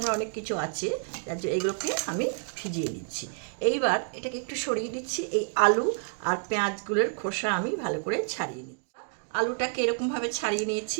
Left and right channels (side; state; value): left; silent; digital silence